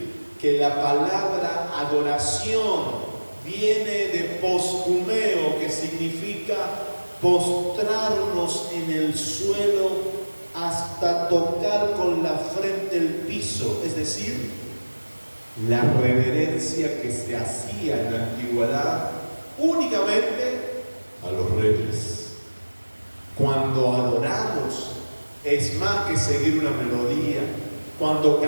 que la palabra adoración viene de postumeo, que significa postrarnos en el suelo hasta tocar con la frente el piso, es decir, la reverencia que se hacía en la antigüedad únicamente a los reyes. Cuando adoramos es más que seguir una melodía. Cuando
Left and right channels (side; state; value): both; inverted; correlation -1.00